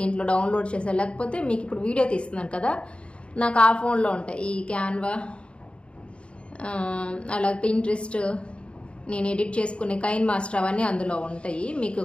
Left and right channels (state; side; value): late; right; 0.058 ms